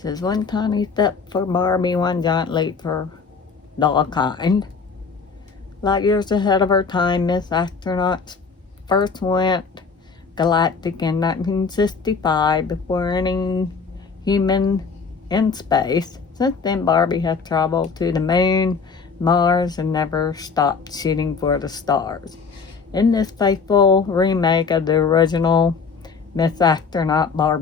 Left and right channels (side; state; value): right; quieter; 5.2 dB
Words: says one tiny step for Barbie, one giant leap for dollkind. Light years ahead of her time, Miss Astronaut first went galactic in 1965 before any human in space. Since then, Barbie has traveled to the moon, Mars, and never stopped shooting for the stars. In this faithful remake of the original Miss Astronaut